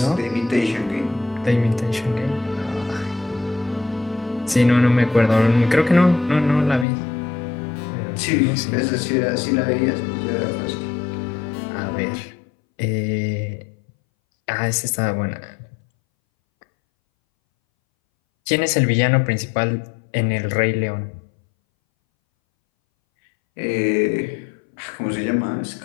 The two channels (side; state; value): right; drops out; at 6.9 s